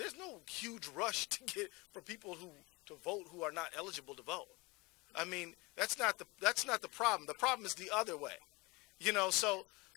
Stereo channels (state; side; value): quieter; right; 24.9 dB